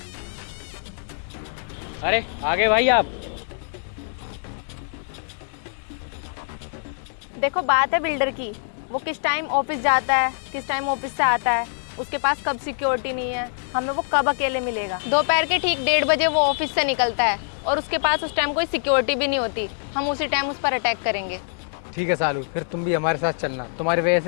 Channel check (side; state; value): right; silent; digital silence